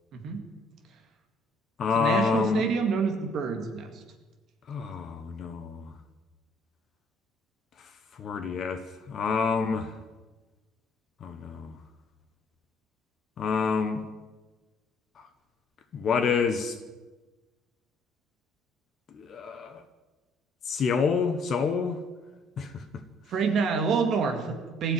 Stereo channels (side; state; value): both; normal; correlation 0.62